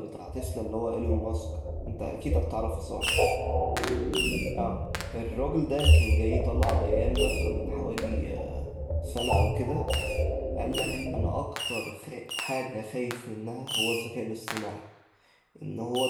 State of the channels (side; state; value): both; identical; correlation 1.00